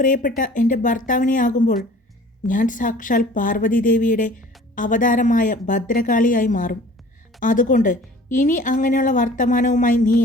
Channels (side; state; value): both; normal; correlation 0.48